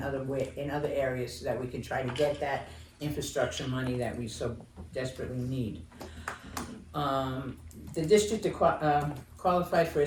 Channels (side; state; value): both; identical; correlation 1.00